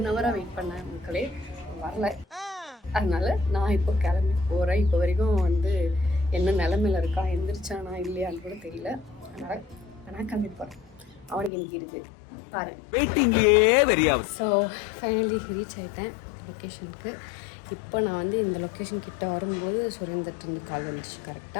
hour வெயிட் பண்ணேன். மக்களே வரல. அதனால நான் இப்போ கிளம்பி போகிறேன். இப்போ வரைக்கும் வந்து என்ன நிலமையில இருக்கா, எந்திரிச்சானா இல்லையான்னு கூட தெரியல. அதனால் நான் கிளம்பி போகிறேன். அவனுக்கு இன்னைக்கு இருக்குது பாரு. ஸோ ஃபைனலி ரீச் ஆகிட்டேன் லொக்கேஷனுக்கு. இப்போ நான் வந்து இந்த லொக்கேஷன் கிட்ட வரும்போது சுரேந்தர்ட்டு கால் வந்துச்சு.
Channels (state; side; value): drops out; right; at 11.5 s